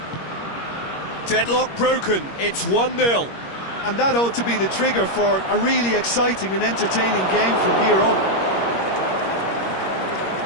Deadlock broken. It's 1-0. And that ought to be the trigger for a really exciting and entertaining game from here on.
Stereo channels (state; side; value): late; right; 21 ms